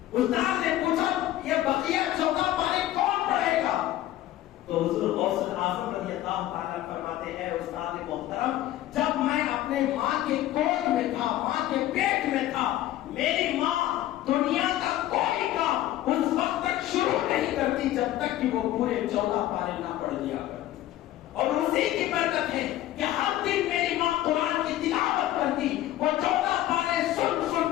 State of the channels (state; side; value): quieter; right; 14.1 dB